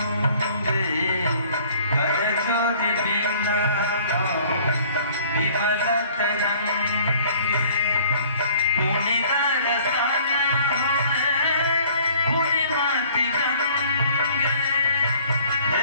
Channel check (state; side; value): inverted; both; correlation -0.55